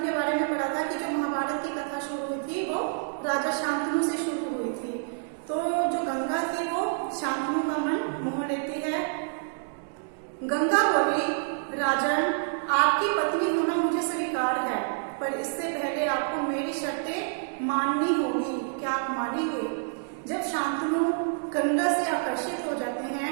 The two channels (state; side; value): silent; left; digital silence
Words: के बारे में पढ़ा था कि जो महाभारत की कथा शुरू हुई थी वो राजा शांतनु से शुरू हुई थी। तो जो गंगा थी वो शांतनु का मन मोह लेती है। गंगा बोली, राजन, आपकी पत्नी होना मुझे स्वीकार है, पर इससे पहले आपको मेरी शर्तें माननी होगी। क्या आप मानेंगे? जब शांतनु गंगा से आकर्षित हो जाते हैं